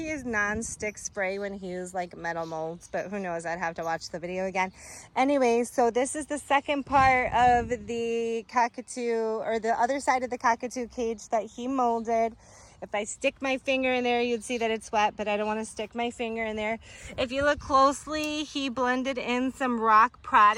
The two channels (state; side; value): identical; both; correlation 1.00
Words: used non-stick spray when he used like metal molds, but who knows? I'd have to watch the video again. Anyway, so this is the second part of the cockatoo, or the other side of the cockatoo cage that he molded. If I stick my finger in there, you'd see that it's wet, but I don't want to stick my finger in there. If you look closely, he blended in some rock